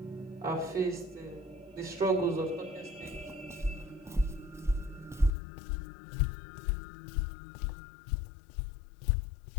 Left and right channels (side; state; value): right; drops out; at 5.3 s